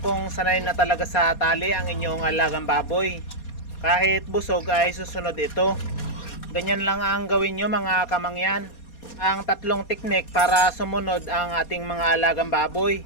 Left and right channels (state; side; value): late; right; 4.2 ms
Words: kung sanay na talaga sa tali ang inyong alagang baboy. Kahit busog ay susunod ito. Ganyan lang ang gawin nyo mga kamangyan. Ang 3 teknik para sumunod ang ating mga alagang baboy.